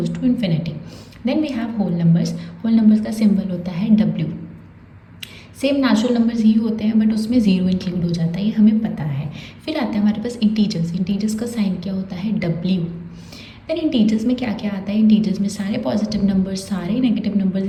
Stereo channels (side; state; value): both; identical; correlation 1.00